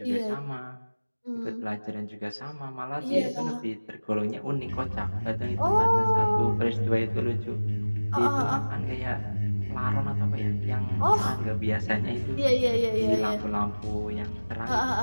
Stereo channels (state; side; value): inverted; both; correlation -1.00